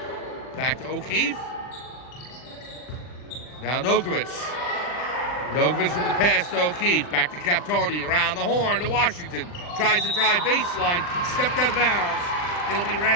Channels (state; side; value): late; right; 40 ms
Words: Back to O'Keefe. Now Nokovic. Nokovic with the pass to O'Keefe. Back to Captoni. Around the horn to Washington. Tries to drive baseline. Stepped out of bounds. It'll be